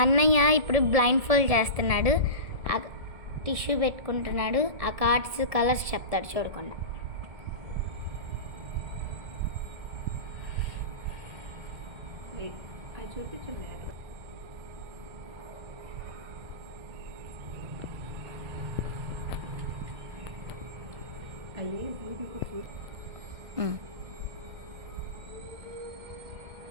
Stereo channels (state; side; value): late; left; 1.7 ms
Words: అన్నయ్య ఇప్పుడు బ్లైండ్ ఫోల్డ్ చేస్తున్నాడు, టిష్యూ పెట్టుకుంటున్నాడు, ఆ కార్డ్స్ కలర్స్ చెప్తాడు చూడకుండా. చూపించండి. అయ్యి